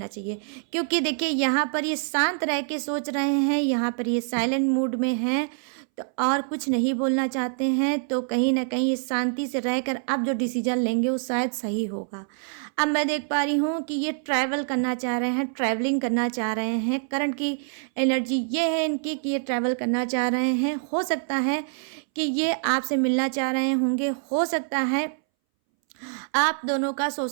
चाहिए। क्योंकि देखिए यहाँ पर ये शांत रह के सोच रहे हैं, यहाँ पर ये साइलेंट मूड में हैं, तो और कुछ नहीं बोलना चाहते हैं। तो कहीं ना कहीं ये शांति से रहकर आप जो डिसीजन लेंगे वो शायद सही होगा। अब मैं देख पा रही हूँ कि ये ट्रैवल करना चाह रहे हैं, ट्रैवलिंग करना चाह रहे हैं। करंट की एनर्जी ये है इनकी कि ये ट्रैवल करना चाह रहे हैं। हो सकता है कि ये आपसे मिलना चाह रहे होंगे, हो सकता है आप दोनों का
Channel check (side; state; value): left; silent; 61 dB below the other